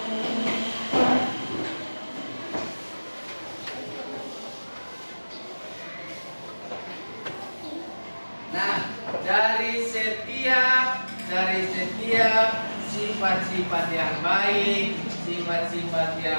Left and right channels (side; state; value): both; inverted; correlation -1.00